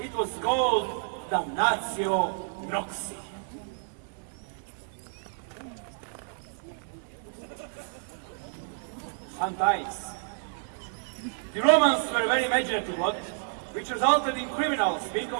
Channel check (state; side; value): silent; left; 58 dB below the other